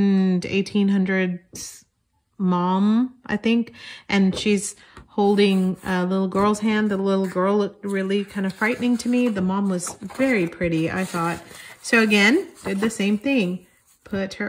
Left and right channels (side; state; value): both; identical; correlation 1.00